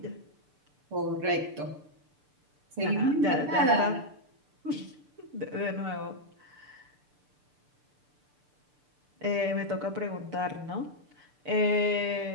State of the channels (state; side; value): late; left; 6.8 ms